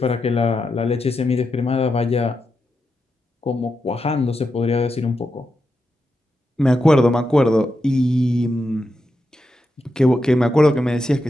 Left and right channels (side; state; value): both; normal; correlation 0.87